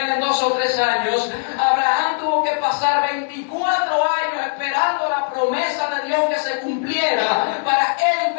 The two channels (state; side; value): silent; right; digital silence